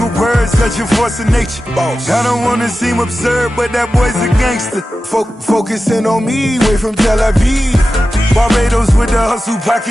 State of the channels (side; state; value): both; normal; correlation 0.93